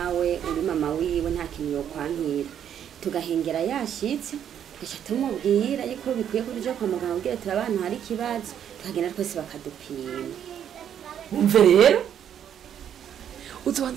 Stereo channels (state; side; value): quieter; left; 9.4 dB